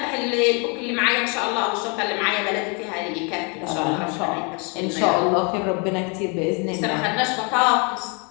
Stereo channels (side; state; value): right; quieter; 33.5 dB